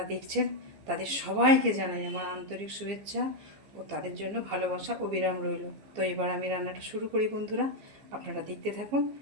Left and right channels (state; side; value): late; left; 15 ms